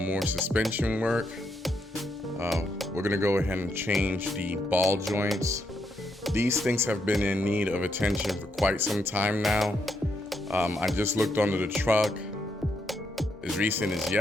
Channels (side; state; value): both; normal; correlation 0.79